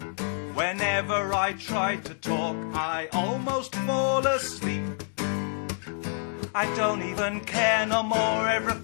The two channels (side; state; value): right; silent; digital silence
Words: Whenever I try to talk, I almost fall asleep. I don't even care no more,